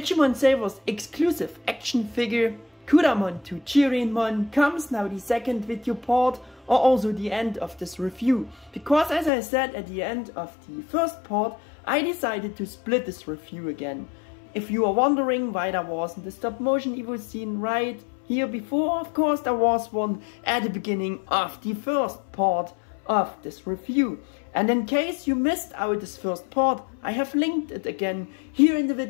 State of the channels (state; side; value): drops out; right; at 9.3 s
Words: Savers Exclusive action figure Kudamon to Chirinmon. Comes now the second video part, or also the end of this review, because as I said at the end of the first part, I decided to split this review again. If you are wondering why there wasn't a stop motion Evo scene right here before, of course there was one at the beginning of the first part of this review. And in case you missed out this first part, I have linked it again here in the